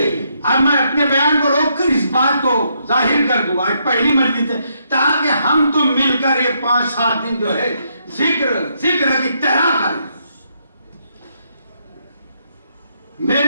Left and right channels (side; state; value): both; inverted; correlation -0.76